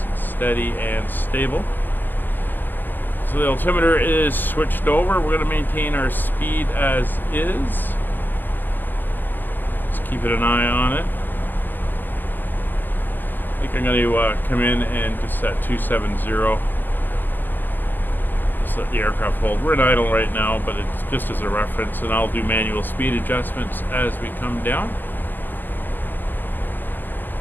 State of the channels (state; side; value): late; right; 0.088 ms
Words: and steady and stable. So the altimeter is switched over. We're going to maintain our speed as is. Just keeping an eye on it. I think I'm going to come in and just set 270. Just let the aircraft hold. We're in idle right now, but it's just as a reference, and I'll do manual speed adjustments as we come down.